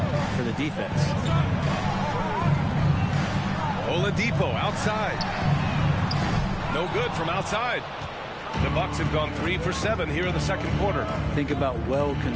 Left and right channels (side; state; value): both; identical; correlation 1.00